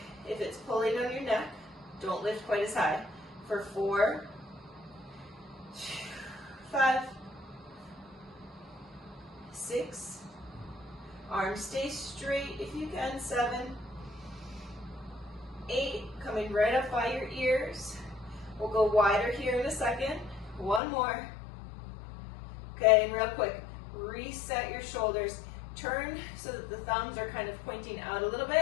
If it's pulling on your neck, don't lift quite as high. For 4, 5, 6, arms stay straight if you can, 7, 8, coming right up by your ears. We'll go wider here in a second. 1 more. Okay, and real quick, reset your shoulders. Turn so that the thumbs are kind of pointing out a little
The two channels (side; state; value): right; drops out; at 20.8 s